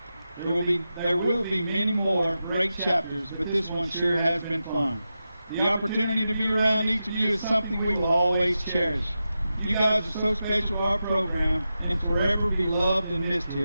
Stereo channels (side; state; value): both; inverted; correlation -0.91